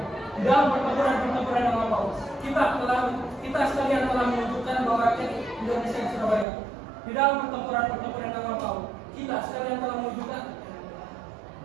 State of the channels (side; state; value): left; drops out; at 6.5 s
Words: di dalam pertempuran yang lampau, kita sekalian telah menunjukkan bahwa rakyat Indonesia di Surabaya. Di dalam pertempuran yang lampau, kita sekalian telah menunjukkan